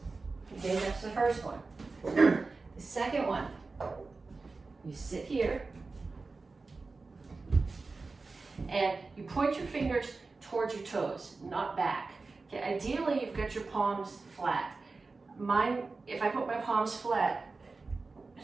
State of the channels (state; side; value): quieter; left; 3.9 dB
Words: Okay, that's the first one. The second one, you sit here and you point your fingers towards your toes, not back. Okay, ideally you've got your palms flat. Mine, if I put my palms flat,